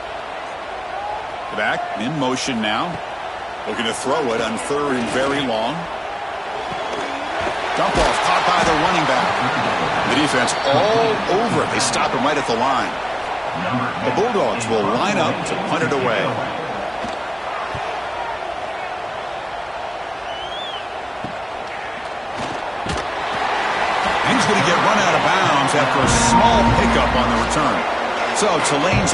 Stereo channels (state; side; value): identical; both; correlation 1.00